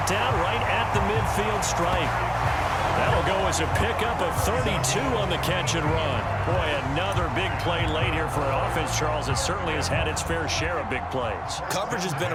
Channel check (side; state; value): both; identical; correlation 1.00